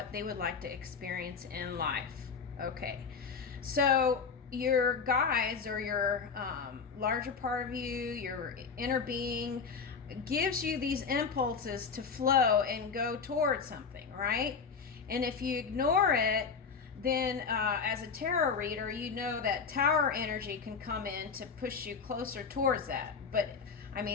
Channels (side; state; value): right; quieter; 5.6 dB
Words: they would like to experience in life. Okay, so your guides or your larger part of you, your inner being, gives you these impulses to flow and go towards something, right? And if you ignore it, then as a tarot reader, you know that tower energy can come in to push you closer towards that. But I